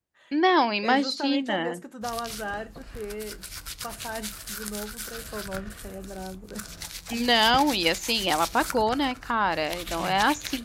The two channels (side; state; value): both; identical; correlation 1.00